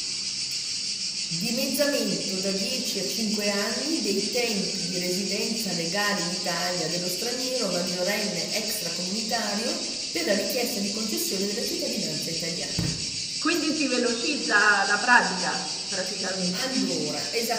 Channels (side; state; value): right; noise; rumble, 29 dB below the sound